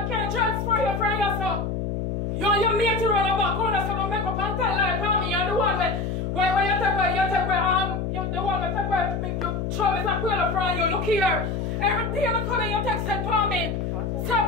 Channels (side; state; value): left; noise; hum, 2 dB below the sound